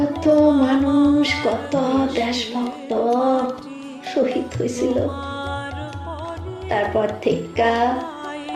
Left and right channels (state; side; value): identical; both; correlation 1.00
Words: মানুষ, কত দেশভক্ত শহীদ হয়েছিল। তারপর থেকে